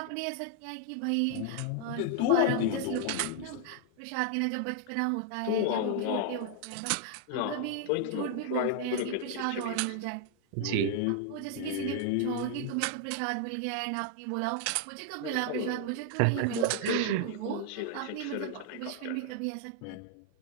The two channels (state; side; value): different; both; correlation 0.00